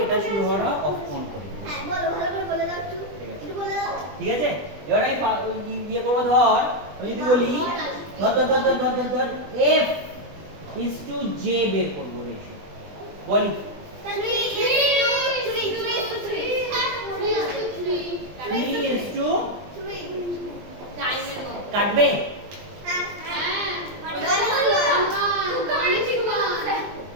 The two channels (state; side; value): late; left; 20 ms